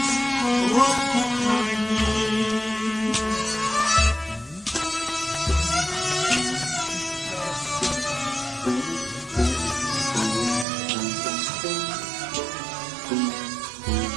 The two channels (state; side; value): drops out; left; at 10.7 s